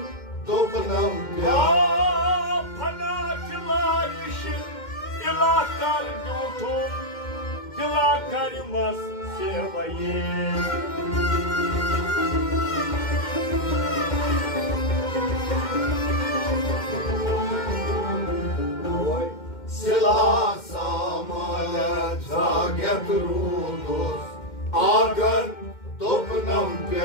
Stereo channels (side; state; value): right; late; 2.1 ms